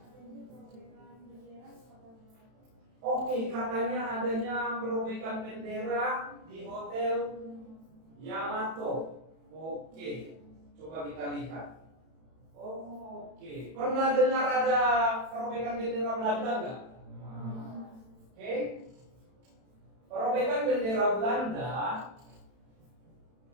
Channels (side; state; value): left; late; 31 ms